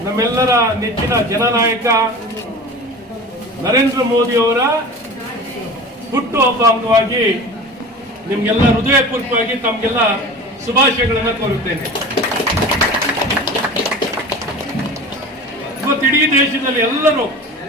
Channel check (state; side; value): normal; both; correlation 0.36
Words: ನಮ್ಮೆಲ್ಲರ ನೆಚ್ಚಿನ ಜನನಾಯಕ ನರೇಂದ್ರ ಮೋದಿ ಅವರ ಹುಟ್ಟುಹಬ್ಬ ಅಂಗವಾಗಿ ನಿಮ್ಗೆಲ್ಲ ಹೃದಯಪೂರ್ವಕವಾಗಿ ತಮಗೆಲ್ಲ ಶುಭಾಶಯಗಳನ್ನು ಕೋರುತ್ತೇನೆ. ಇವತ್ತು ಇಡೀ ದೇಶದಲ್ಲಿ ಎಲ್ಲರೂ